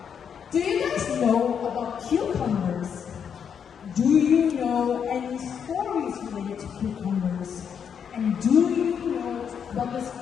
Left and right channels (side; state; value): right; quieter; 7.5 dB